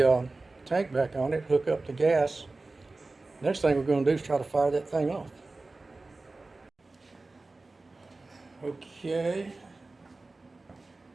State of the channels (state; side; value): quieter; left; 3.4 dB